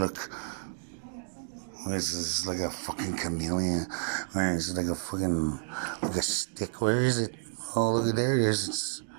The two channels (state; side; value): silent; left; digital silence